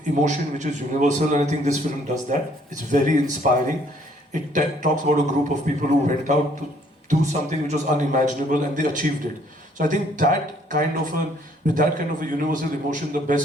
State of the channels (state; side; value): normal; both; correlation 0.63